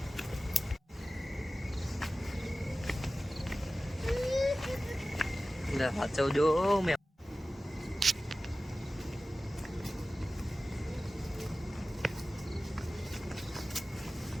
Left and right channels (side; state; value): both; normal; correlation 0.96